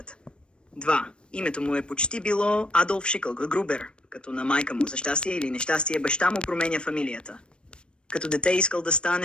2. Името му е почти било Адолф Грубер, като на майка му за щастие или нещастие баща му променя фамилията. Като дете искал да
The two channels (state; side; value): late; right; 0.055 ms